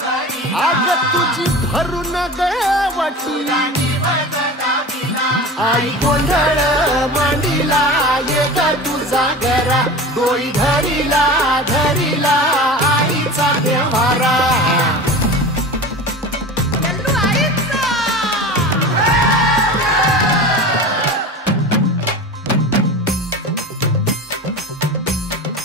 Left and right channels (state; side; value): normal; both; correlation 0.33